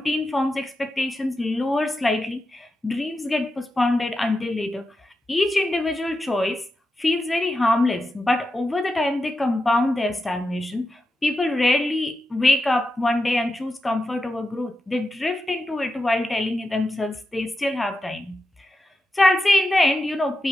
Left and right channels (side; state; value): both; normal; correlation 0.89